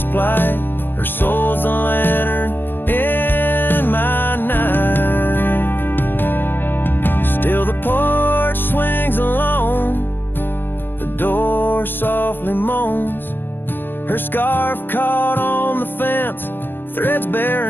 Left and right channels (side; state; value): right; late; 0.097 ms